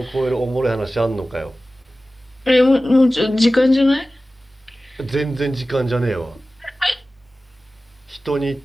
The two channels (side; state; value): both; normal; correlation 0.96